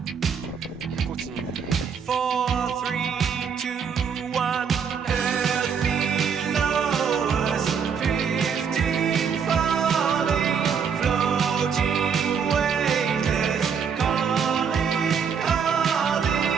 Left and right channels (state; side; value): quieter; left; 6.7 dB